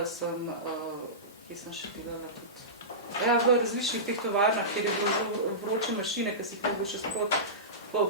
sem, kje sem še delala tudi, v različnih teh tovarnah, kjer je bilo vroče mašine, ki si jih mogo še sprot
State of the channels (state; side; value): normal; both; correlation -0.19